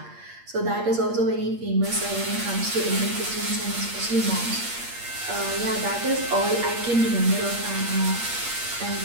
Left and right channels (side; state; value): left; late; 8.5 ms